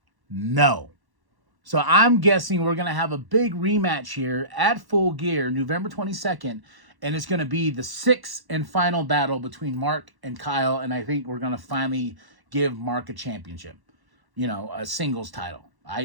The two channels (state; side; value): late; left; 1.1 ms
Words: no. So I'm guessing we're going to have a big rematch here at Full Gear, November 22nd. And it's going to be the 6th and final battle between Mark and Kyle. And I think we're going to finally give Mark a championship. You know, a singles title.